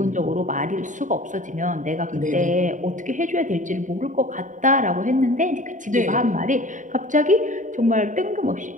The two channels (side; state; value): left; late; 0.37 ms